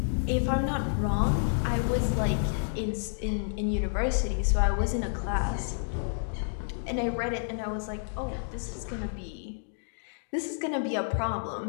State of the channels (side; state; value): right; silent; digital silence